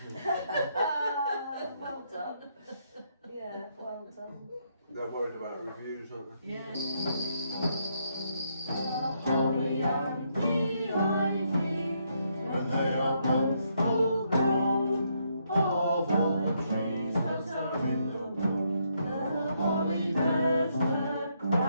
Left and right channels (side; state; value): both; inverted; correlation -0.76